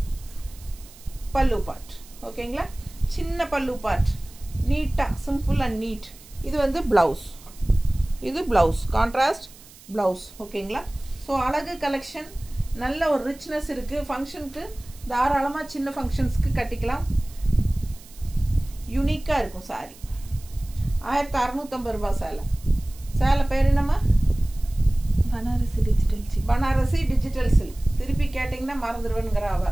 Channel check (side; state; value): right; noise; hiss, 22 dB below the sound